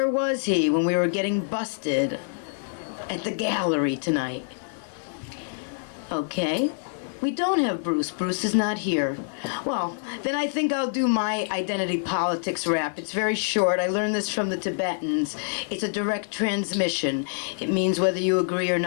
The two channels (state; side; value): silent; right; 61 dB below the other